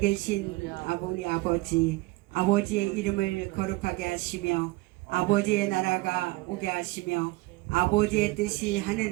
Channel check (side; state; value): left; quieter; 21.3 dB